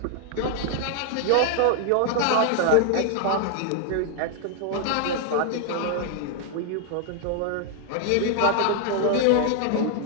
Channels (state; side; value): different; both; correlation 0.00